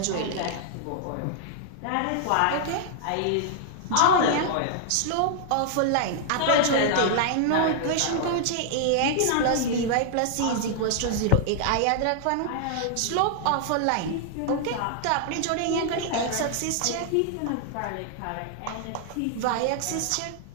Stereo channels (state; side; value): different; both; correlation -0.01